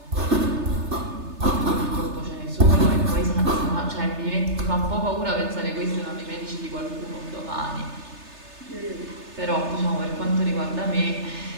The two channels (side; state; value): left; late; 3.3 ms